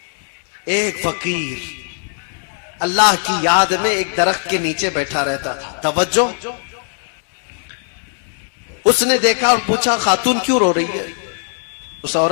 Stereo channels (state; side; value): silent; right; 64 dB below the other